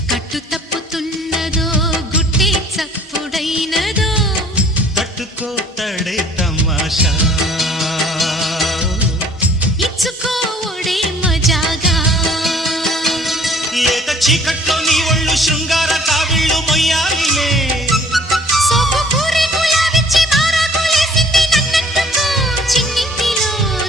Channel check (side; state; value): both; normal; correlation 0.55